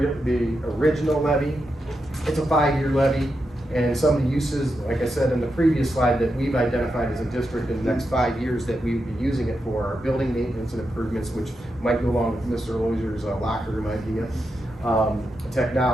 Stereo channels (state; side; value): normal; both; correlation 0.86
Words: original levy. It's a 5-year levy. And some of the uses, like I said in the previous slide, that we've identified as a district in the next 5 years that we would be using it for are building maintenance and improvements, which might go along with Mr. Loisier's locker room idea.